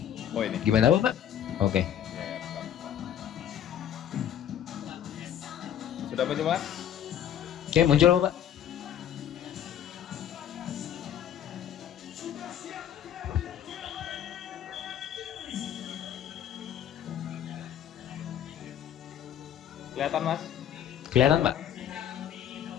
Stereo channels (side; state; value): right; quieter; 10.0 dB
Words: Oh ini. Gimana Bapak? Oke. Ya, bentar. Sudah muncul Mas? Oke, muncul Bapak. Kelihatan Mas? Kelihatan Pak?